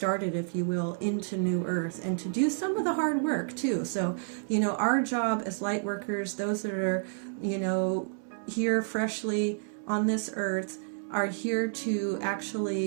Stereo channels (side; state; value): left; silent; 58 dB below the other